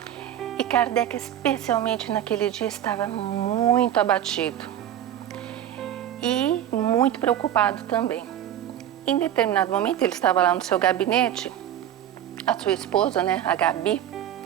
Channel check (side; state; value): left; quieter; 10.9 dB